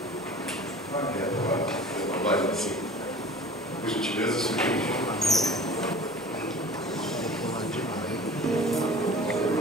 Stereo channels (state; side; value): normal; both; correlation 0.43